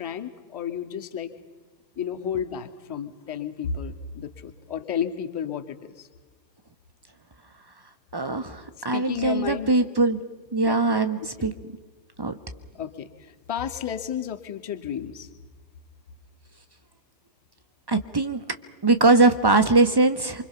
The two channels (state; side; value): late; left; 1.1 ms